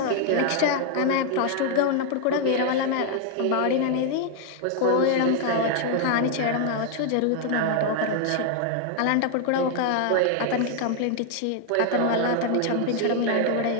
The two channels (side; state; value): both; different; correlation 0.00